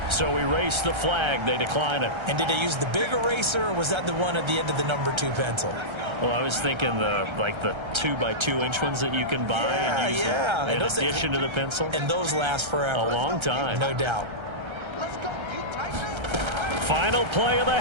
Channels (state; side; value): late; left; 1.3 ms